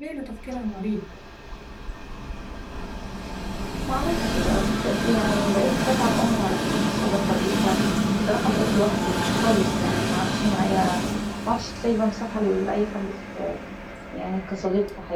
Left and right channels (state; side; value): identical; both; correlation 1.00